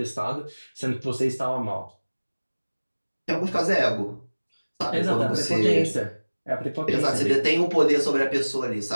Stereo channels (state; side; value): inverted; both; correlation -1.00